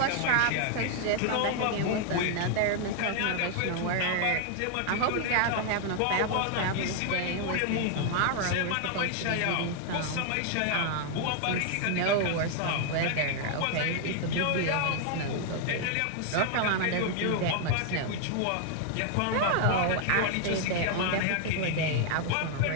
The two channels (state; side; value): different; both; correlation 0.00